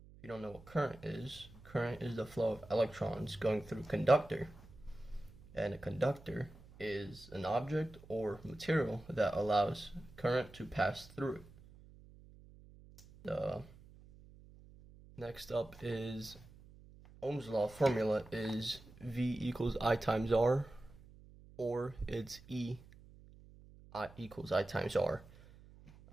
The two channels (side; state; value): right; noise; hum, 21 dB below the sound